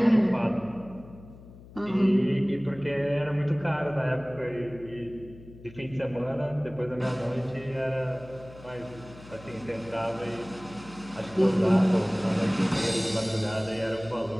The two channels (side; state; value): left; noise; hum, 19 dB below the sound